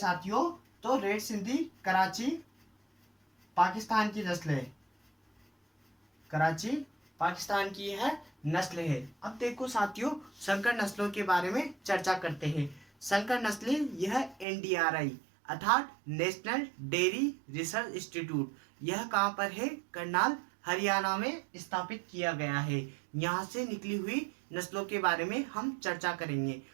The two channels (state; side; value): drops out; left; at 14.5 s